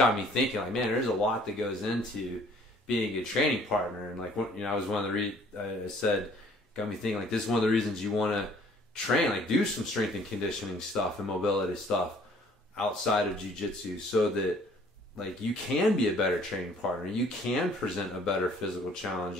me thinking, like, man, there's a lot that goes into being a good training partner, and like, you know, I was one of the I said, got me thinking, like, this is one of the reasons you want to train, like, do some strength and conditioning stuff and mobility stuff outside of jiu-jitsu, so that, like, you can be a better training partner. You can present a better physical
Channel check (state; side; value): normal; both; correlation 0.57